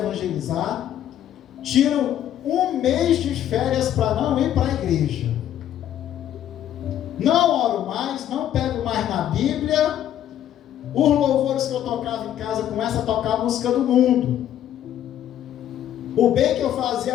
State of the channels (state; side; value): quieter; right; 11.2 dB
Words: tiro um mês de férias para não ir para a igreja, não oro mais, não pego mais na Bíblia. Os louvores que eu tocava em casa começam a tocar a música do mundo. O bem que eu